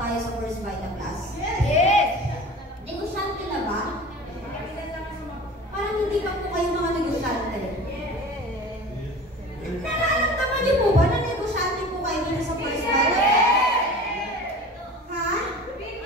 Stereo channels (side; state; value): both; normal; correlation 0.39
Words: tayo sa First Vita Plus? Yes! Negosyante na ba? Parang hindi pa po kayo mga negosyante. Nararamdaman niyo po ba na negosyante po kayo dito sa First Vita? Ha?